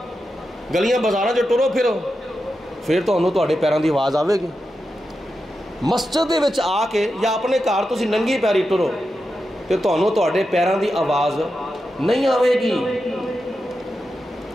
گلیاں بازاراں چ ٹرو پھرو، پھر تانوں تہاڈے پیراں دی آواز آوے گی۔ مسجد دے وچ آ کے یا اپنے گھر تسی ننگی پیری ٹرو تے تانوں تہاڈے پیراں دی آواز نہیں آوے گی۔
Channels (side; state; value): both; normal; correlation 0.89